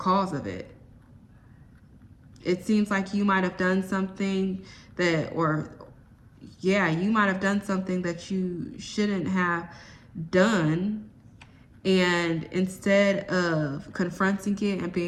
of it. It seems like you might have done something that, or yeah, you might have done something that you shouldn't have done. And instead of confronting it and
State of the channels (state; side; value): identical; both; correlation 1.00